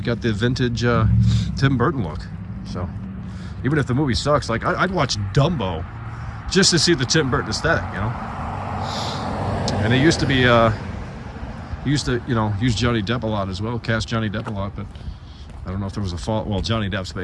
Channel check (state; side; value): identical; both; correlation 1.00